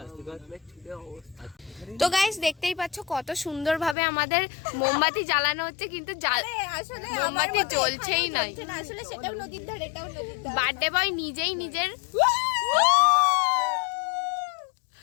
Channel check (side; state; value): right; drops out; at 4.0 s